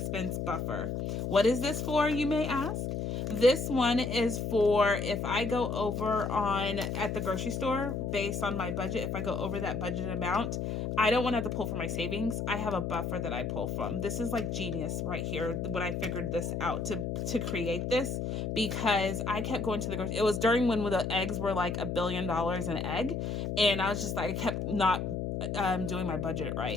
buffer. What is this for, you may ask? This one is for if I go over at the grocery store based on my budget, if I go over that budget amount, I don't want to have to pull from my savings. I have a buffer that I pull from. This is like genius right here when I figured this out to create this, because I kept going to the grocery. It was during when the eggs were like $1 billion an egg, and I was just like, I kept not doing my budget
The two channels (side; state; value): left; noise; hum, 2 dB below the sound